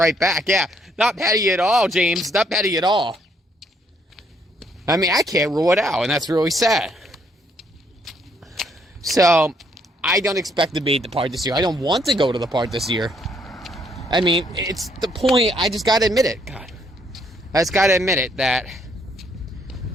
back. Yeah, not petty at all, James. Not petty at all. I mean, I can't rule it out, and that's really sad. So, I don't expect to be at the park this year. I don't want to go to the park this year. I mean, it's the point. I just gotta admit it. God. I just gotta admit it that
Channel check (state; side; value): normal; both; correlation 0.69